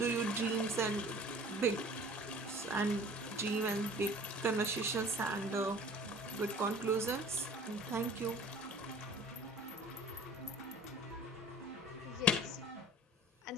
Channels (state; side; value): normal; both; correlation 0.47